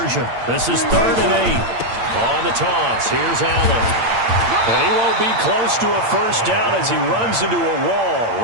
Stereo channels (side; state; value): left; late; 8.7 ms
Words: This is 3rd and 8. On the toss, here's Allen. And he won't be close to a 1st down as he runs into a wall